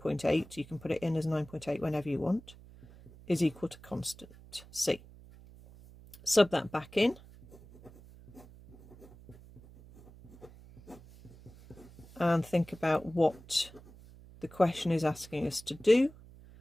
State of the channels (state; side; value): noise; right; hum, 21 dB below the sound